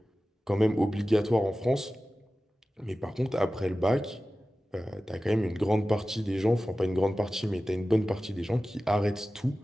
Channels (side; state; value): both; normal; correlation 0.95